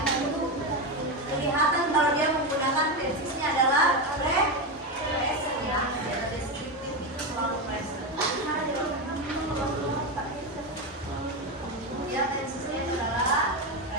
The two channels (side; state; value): both; normal; correlation 0.13